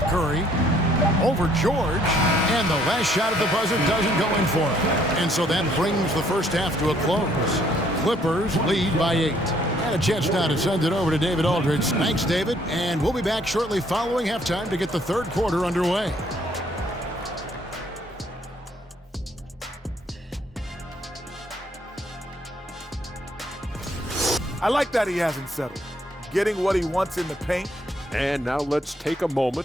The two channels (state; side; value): normal; both; correlation 0.65